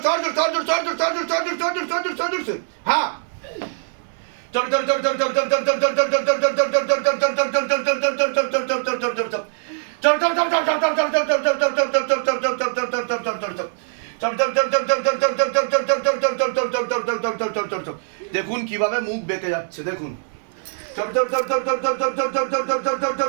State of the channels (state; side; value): silent; left; digital silence